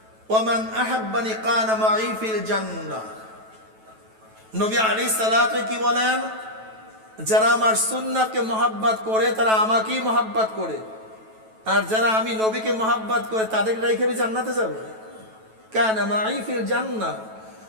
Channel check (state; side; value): late; left; 9.2 ms